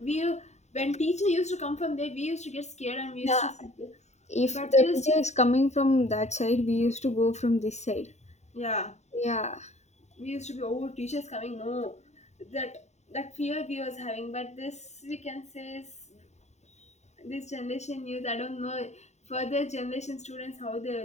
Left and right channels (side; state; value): right; late; 0.33 ms